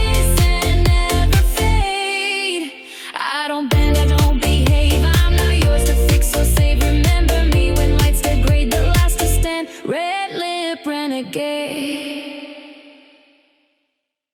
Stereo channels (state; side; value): identical; both; correlation 1.00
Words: and never fade. I don't bend, I don't behave. I'm not yours to fix or save. Remember me when lights degrade, the last to stand. Red lip renegade.